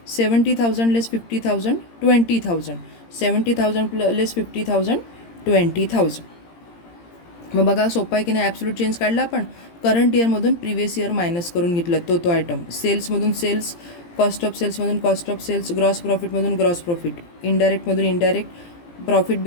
70,000 less 50,000, 20,000. 70,000 less 50,000, 20,000. मग बघा सोपा आहे की नाही. ॲब्सोल्यूट चेंज काढला आपण. करंट इयरमधून प्रिव्हियस इयर मायनस करून घेतलं तो आयटम. सेल्समधून सेल्स, कॉस्ट ऑफ सेल्समधून कॉस्ट ऑफ सेल्स, ग्रॉस प्रॉफिटमधून ग्रॉस प्रॉफिट, इनडायरेक्टमधून इनडायरेक्ट, प्रॉफिट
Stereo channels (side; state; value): right; late; 17 ms